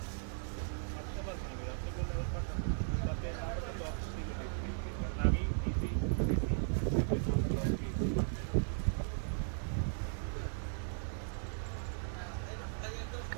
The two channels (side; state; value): left; silent; digital silence